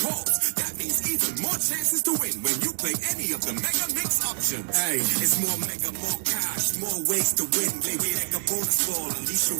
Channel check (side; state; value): left; silent; digital silence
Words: That means even more chances to win when you play any of the mega mix options. Hey, it's more mega, more cash, more ways to win. Playway Mega Bonus Ball, unleash your